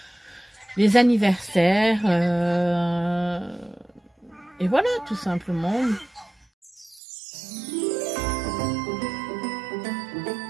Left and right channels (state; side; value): drops out; left; at 7.0 s